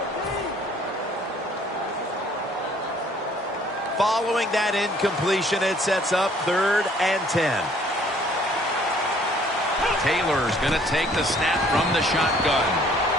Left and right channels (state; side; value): normal; both; correlation 0.59